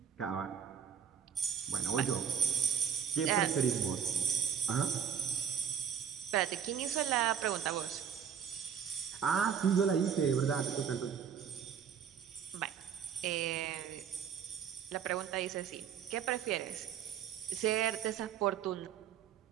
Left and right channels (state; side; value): quieter; left; 7.9 dB